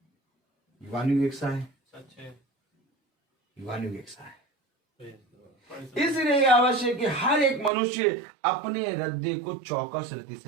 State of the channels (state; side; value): drops out; left; at 7.7 s